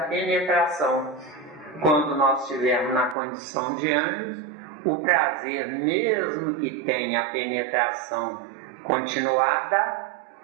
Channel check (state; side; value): drops out; left; at 3.2 s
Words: Quando nós estivermos na condição de anjos, o prazer, mesmo que tenha a penetração continuada,